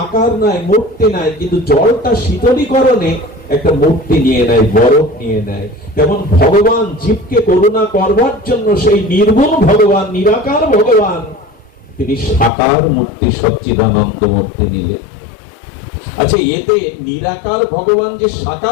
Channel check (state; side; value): drops out; right; at 12.5 s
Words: আকার নাই, মূর্তি নাই, কিন্তু জলটা শীতলীকরণে একটা মূর্তি নিয়ে নেয়, বরফ নিয়ে নেয়। যেমন ভগবান জীবকে করুণা করবার জন্য সেই নির্গুণ ভগবান, নিরাকার ভগবান, তিনি সাকার মূর্তি, সচ্চিদানন্দ মূর্তি নিলেন। আচ্ছা, এতে নিরাকার ভগবান যে